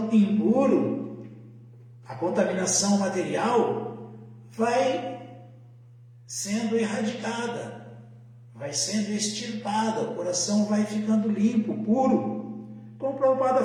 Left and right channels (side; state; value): both; identical; correlation 1.00